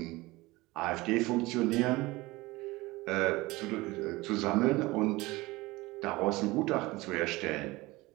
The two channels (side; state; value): left; quieter; 21.0 dB